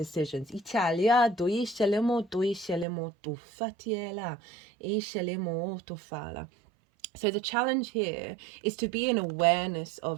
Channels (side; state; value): left; drops out; at 2.9 s